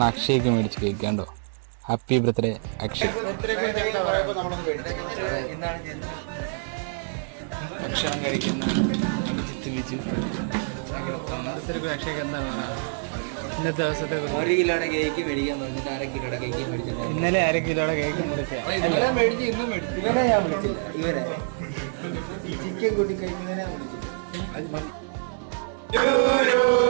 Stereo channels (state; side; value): silent; left; 61 dB below the other